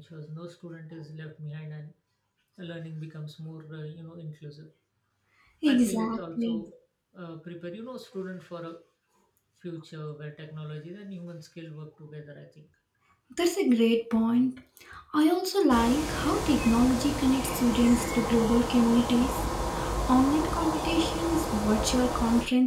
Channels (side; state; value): both; identical; correlation 1.00